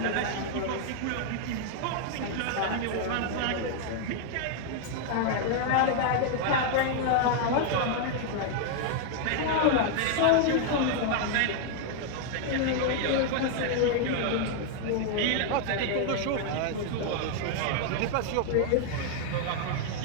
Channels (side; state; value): both; different; correlation 0.00